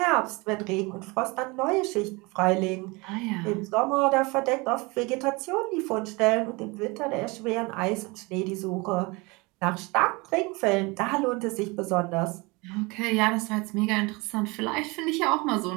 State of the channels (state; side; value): quieter; left; 26.0 dB